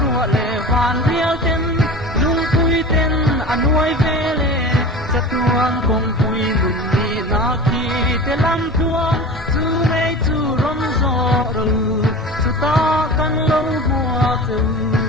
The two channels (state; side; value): normal; both; correlation 0.34